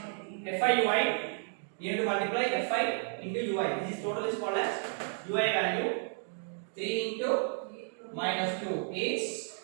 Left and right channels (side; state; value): left; silent; 56 dB below the other